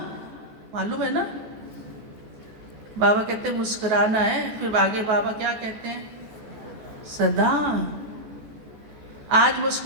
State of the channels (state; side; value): late; left; 14 ms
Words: मालूम है ना? बाबा कहते हैं मुस्कुराना है, फिर आगे बाबा क्या कहते हैं? सदा। आज